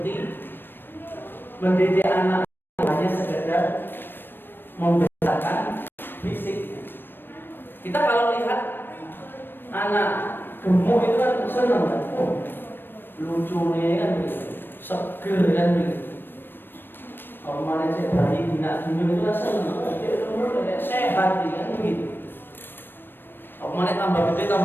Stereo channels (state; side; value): late; right; 0.096 ms